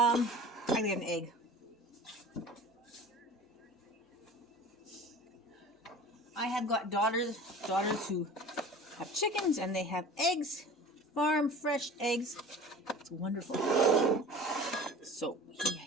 gotta get an egg. I have got daughters who have chickens and they have eggs, farm fresh eggs. It's wonderful. So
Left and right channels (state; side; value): normal; both; correlation 0.40